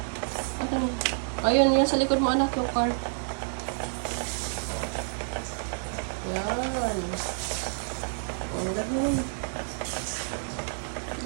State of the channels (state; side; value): silent; left; digital silence